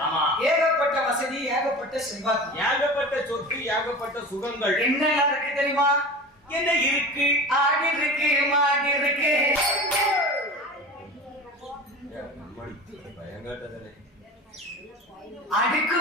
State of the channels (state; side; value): normal; both; correlation 0.34